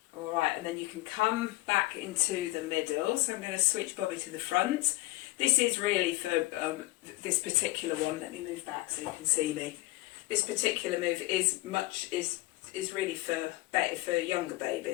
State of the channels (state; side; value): quieter; right; 19.8 dB